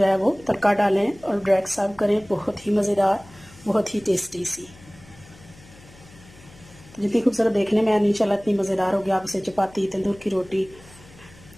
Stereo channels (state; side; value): noise; left; hum, 23 dB below the sound